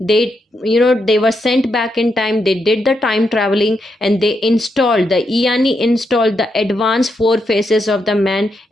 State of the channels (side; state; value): both; normal; correlation 0.82